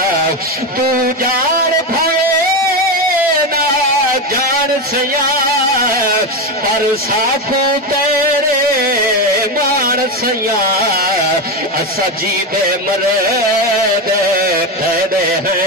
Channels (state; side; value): normal; both; correlation 0.14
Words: तू जान भवे ना जान सया पर साखो तेरे मान सया असा जी दे मरद ठहरे